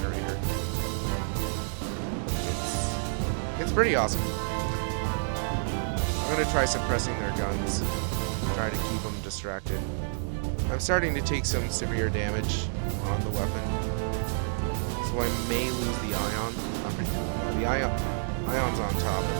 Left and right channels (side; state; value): left; silent; digital silence